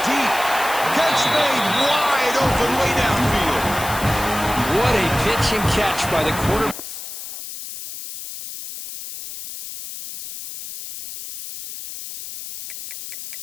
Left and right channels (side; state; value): left; noise; hiss, 10 dB below the sound